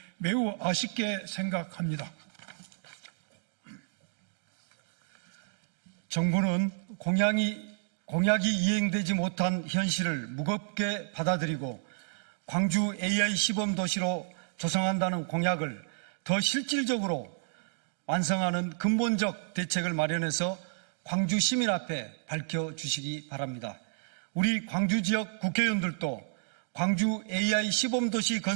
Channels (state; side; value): silent; left; digital silence